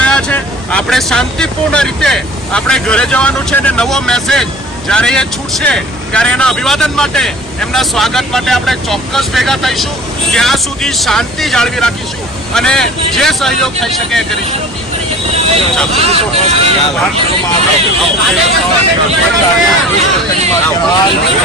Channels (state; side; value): normal; both; correlation 0.43